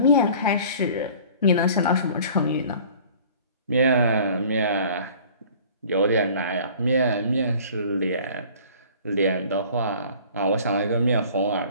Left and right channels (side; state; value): both; inverted; correlation -0.48